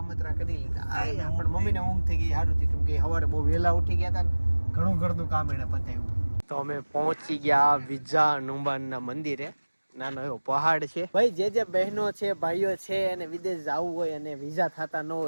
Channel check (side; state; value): both; inverted; correlation -1.00